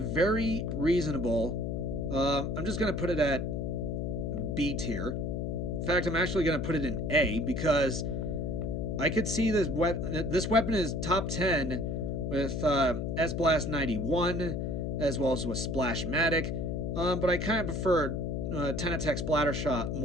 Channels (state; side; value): noise; left; hum, 1 dB below the sound